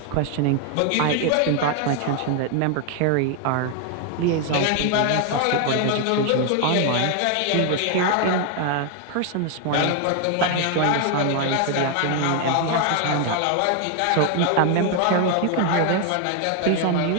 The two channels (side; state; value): both; different; correlation 0.01